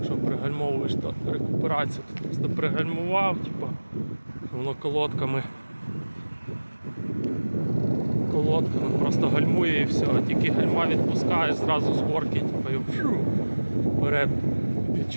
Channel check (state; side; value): inverted; both; correlation -1.00